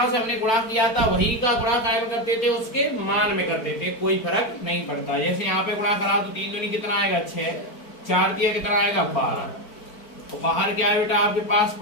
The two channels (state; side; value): late; right; 4.5 ms